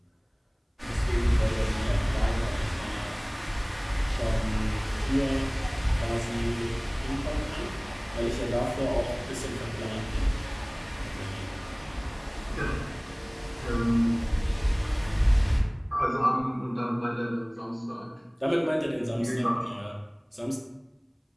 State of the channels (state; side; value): identical; both; correlation 1.00